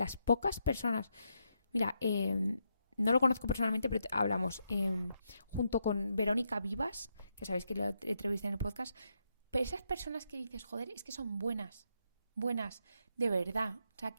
pocas personas, mira, no lo conozco personalmente, pero hablamos junto con Verónica Vivas, que sabéis que la entrevisté en el podcast. Pero esas personas que dices, joder, es que son buenas, de verdad. O sea,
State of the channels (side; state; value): both; inverted; correlation -0.80